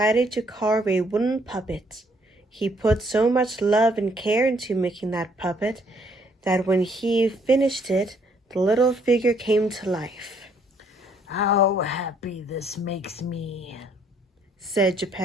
to carve a wooden puppet. He put so much love and care into making that puppet that when he finished it, the little figure came to life. "How happy this makes me," said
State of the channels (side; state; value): both; normal; correlation 0.66